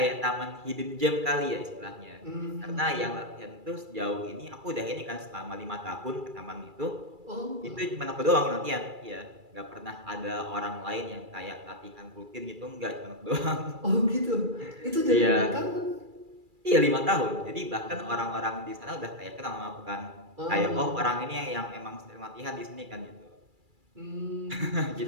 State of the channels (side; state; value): left; late; 2.3 ms